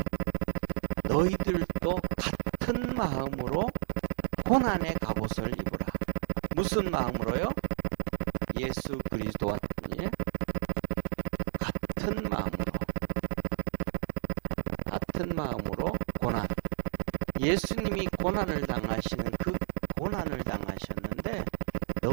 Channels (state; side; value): silent; left; digital silence